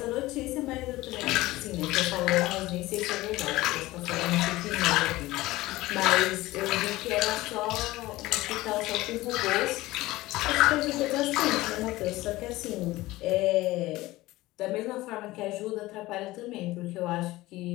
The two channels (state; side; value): quieter; right; 18.3 dB